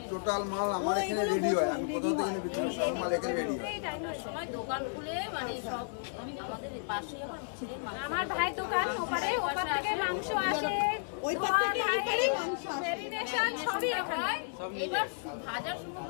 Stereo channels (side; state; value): right; silent; digital silence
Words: টোটাল মাল আমার ও, এখানে এগুলো রেডি হয়। বোঝো, আমি ready কোথাও থেকে হয়। বিক্রি সব মাল এখানে রেডি হয়। সময় দোকান খুলে মানে আচ্ছা। সব আমাদের পাশেই আমার ছেলের মাংস। আমার ভাই দোকান ওপারে, ওপার থেকে মাংস আসে, ওই পার থেকে এই পারে মাংস আসে। ম্যারিনেশন সবই হয়। এবার ভাজা শুরু